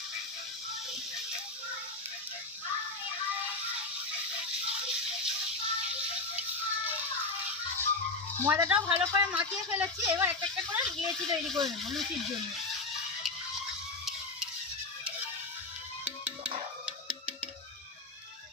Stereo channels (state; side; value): quieter; right; 3.3 dB